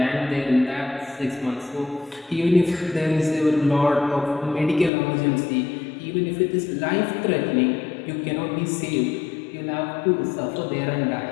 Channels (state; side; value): drops out; right; at 4.9 s